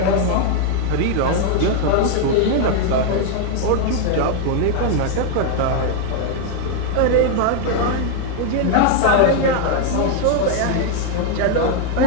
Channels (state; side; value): different; both; correlation 0.00